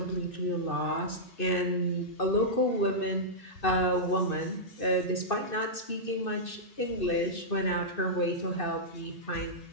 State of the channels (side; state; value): right; late; 2.6 ms